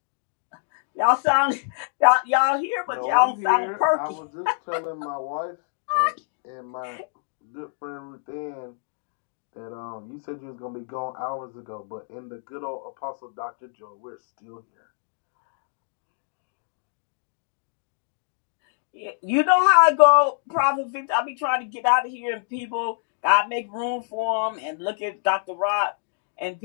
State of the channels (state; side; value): silent; right; digital silence